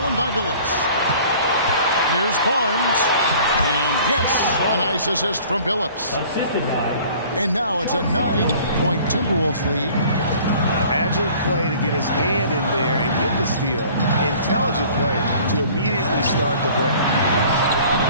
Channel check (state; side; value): inverted; both; correlation -0.50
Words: by Billups. Here's Barnes. And yes, a nice assist from Billups. And now it's a 9-point Timberwolves lead. Agile play to get his hand in there and get the steal. Intelligent play to immediately start the break.